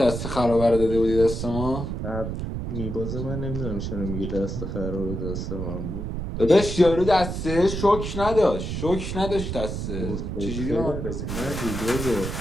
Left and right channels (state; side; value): noise; right; rumble, 4 dB below the sound